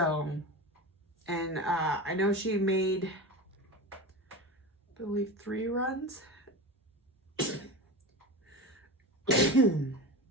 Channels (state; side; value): normal; both; correlation 0.26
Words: and I know she made, I believe, 3 runs.